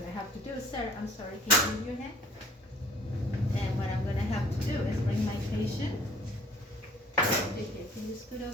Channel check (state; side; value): normal; both; correlation 0.52